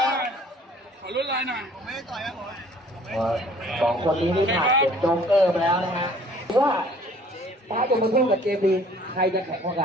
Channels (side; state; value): both; normal; correlation 0.54